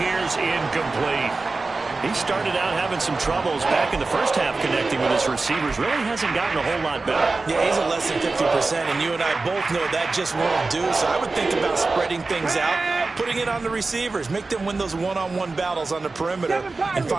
here's incomplete. He started out having some troubles back in the first half connecting with his receivers. Really hasn't gotten a whole lot better. Yeah, he's at less than 50%, and you and I both know that just won't do. So I would think about spreading things out, putting it on the receivers, make them win those one-on-one battles on the perimeter and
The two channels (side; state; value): left; quieter; 3.7 dB